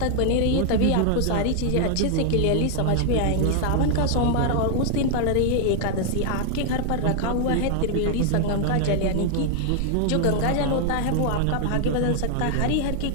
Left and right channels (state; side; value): different; both; correlation 0.00